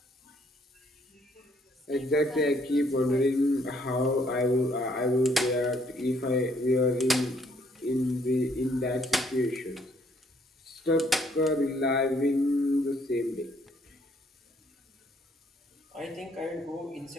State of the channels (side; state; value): both; normal; correlation 0.67